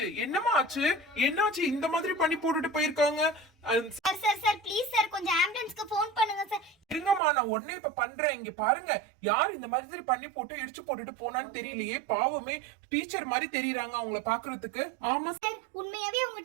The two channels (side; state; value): left; drops out; at 7.2 s